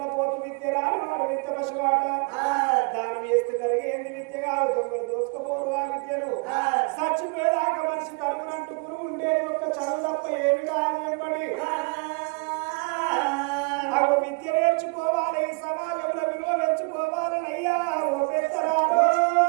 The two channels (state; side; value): quieter; left; 32.6 dB